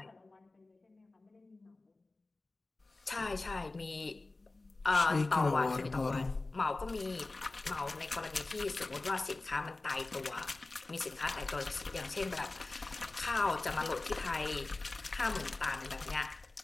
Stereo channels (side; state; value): right; quieter; 3.3 dB